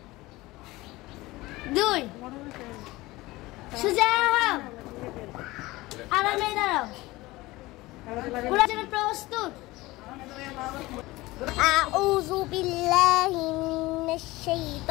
2 সোজা হও, আরামে দাঁড়াও। কোরআন জন্য প্রস্তুত। أعوذ بالله من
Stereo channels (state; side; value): quieter; right; 19.9 dB